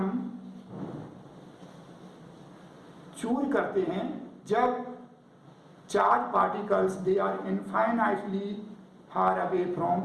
चूज करते हैं जब charge particles they are infinitely far away from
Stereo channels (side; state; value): both; identical; correlation 1.00